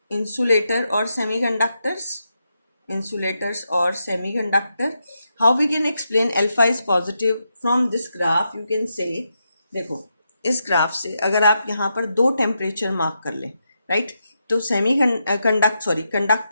insulator or semiconductors. Insulators or semiconductor. How we can explain alpha is positive? From this graph you can say, देखो इस graph से अगर आप यहाँ पर दो temperature mark कर लें, राइट, तो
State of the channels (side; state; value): both; inverted; correlation -0.84